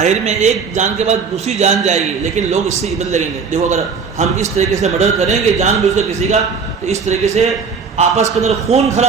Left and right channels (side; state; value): left; quieter; 5.5 dB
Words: میں ایک جان کے بعد دوسری جان جائے گی, لیکن لوگ اس سے عبرت لگیں گے. دیکھو اگر ہم اس طریقے سے مرڈر کریں گے جان بوجھ کر کسی کا تو اس طریقے سے آپس کے اندر خون